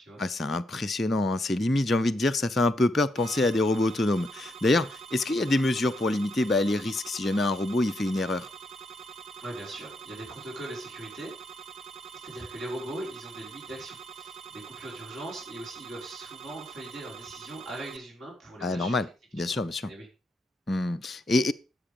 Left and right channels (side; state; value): both; normal; correlation 0.78